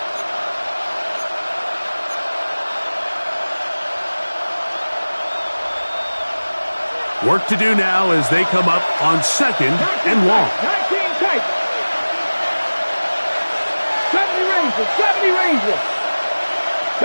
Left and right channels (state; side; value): inverted; both; correlation -1.00